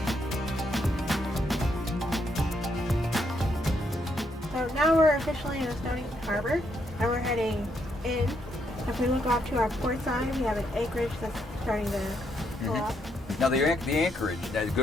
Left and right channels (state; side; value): normal; both; correlation 0.76